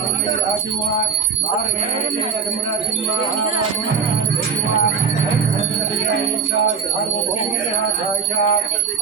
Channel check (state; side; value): quieter; left; 5.8 dB